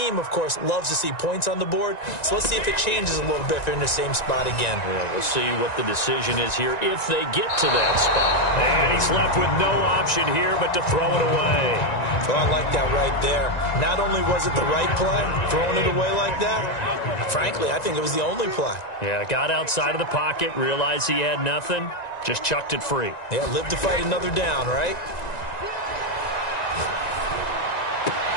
of course, loves to see points on the board. So let's see if it changes a little bit if they're in the same spot again. Yeah, we'll see what the decision is here if they get to that spot. And he's left with no option here but to throw it away. Well, I like that right there. Not only was it the right play, throwing it away like that, frankly, I think it was the only play. Yeah, got outside of the pocket, realized he had nothing, just chucked it free. Yeah, live to fight another down, right?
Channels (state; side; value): late; right; 1.9 ms